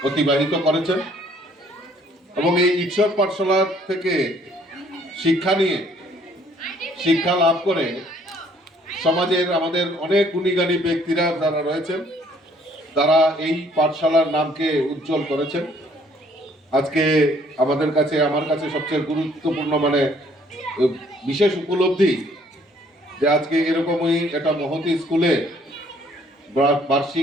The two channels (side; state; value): both; normal; correlation 0.62